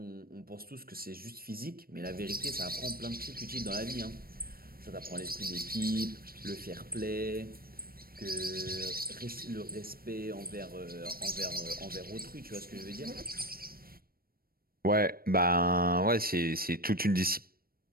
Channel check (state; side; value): late; left; 0.43 ms